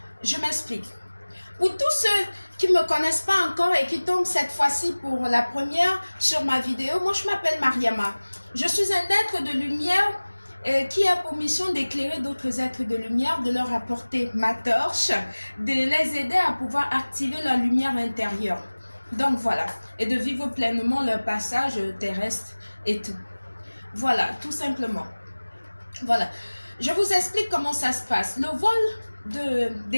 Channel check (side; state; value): both; inverted; correlation -1.00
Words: Je m'explique. Pour tous ceux qui ne me connaissent pas encore et qui tombent cette fois-ci pour la première sur ma vidéo, moi je m'appelle Mariama. Je suis un être de lumière qui a pour mission d'éclairer d'autres êtres de lumière, de leur apporter ma torche, de les aider à pouvoir activer leur lumière intérieure. Donc voilà, et de vivre pleinement leur passage terrestre et tout. Voilà, tout simplement. Voilà, je vous explique comment ça se passe. Le vol